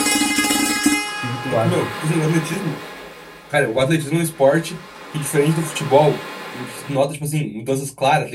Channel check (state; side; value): identical; both; correlation 1.00